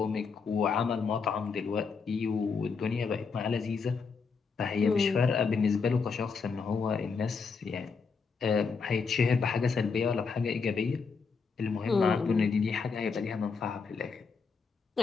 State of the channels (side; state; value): right; quieter; 5.2 dB